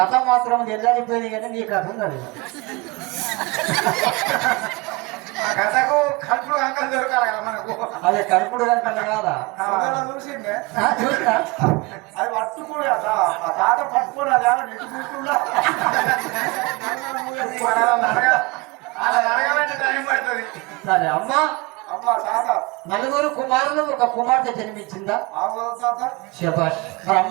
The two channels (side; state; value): left; quieter; 25.1 dB